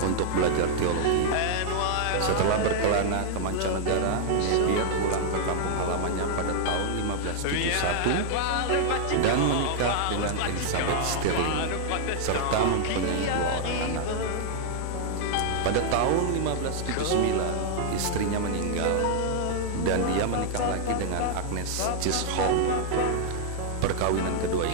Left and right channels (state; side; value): different; both; correlation -0.01